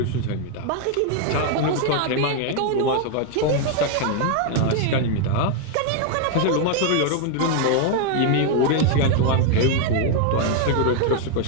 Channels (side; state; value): both; different; correlation 0.00